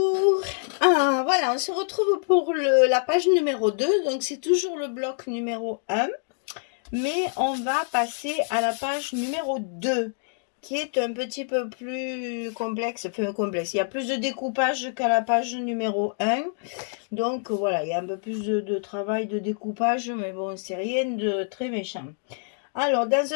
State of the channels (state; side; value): silent; right; 61 dB below the other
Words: Ah, voilà, on se retrouve pour la page numéro 2. Donc, c'est toujours le bloc numéro 1. Mais on va passer à la page numéro 2, qui est un petit peu plus complexe. Enfin, complexe. Il y a plus de découpage qu'à la page numéro 1. Donc, voilà, il y a un peu plus de travail de découpage. Mais bon, c'est rien de très méchant. Alors, dans